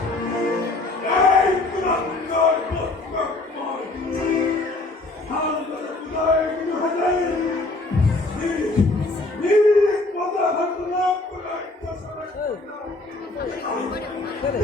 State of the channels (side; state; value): right; quieter; 3.0 dB